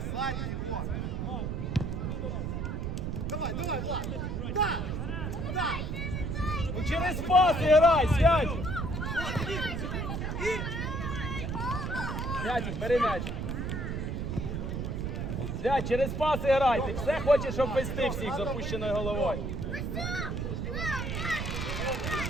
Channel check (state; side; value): noise; right; rumble, 2 dB below the sound